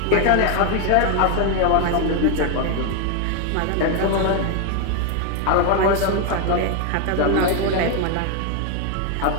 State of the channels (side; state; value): both; different; correlation 0.01